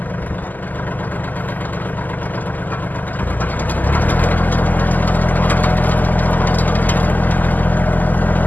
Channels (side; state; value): right; late; 0.084 ms